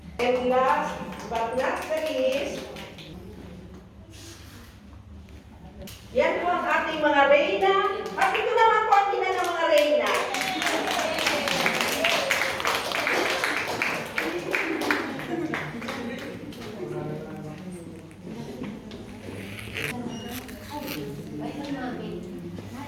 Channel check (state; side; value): identical; both; correlation 1.00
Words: And last but not the least, yan po ang ating mga reyna. At ito naman po ang ina ng mga reyna.